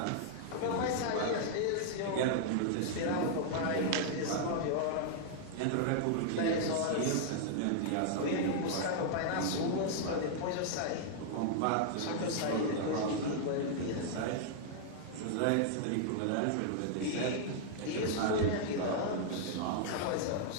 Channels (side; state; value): both; different; correlation -0.01